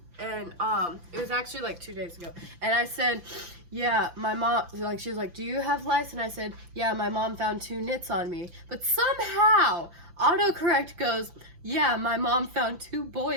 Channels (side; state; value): left; late; 5.9 ms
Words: and it was actually like 2 days ago, and I said, yeah, my mom, like, she was like, do you have lice? And I said, yeah, my mom found 2 nits on me, but somehow autocorrect goes, yeah, my mom found 2